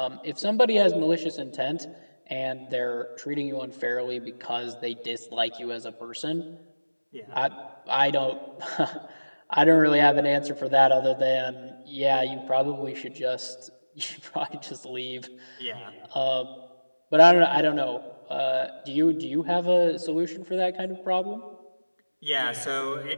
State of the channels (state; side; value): inverted; both; correlation -1.00